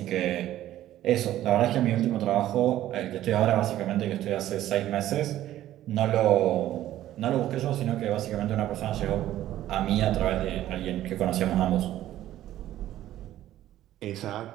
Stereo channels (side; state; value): left; quieter; 13.3 dB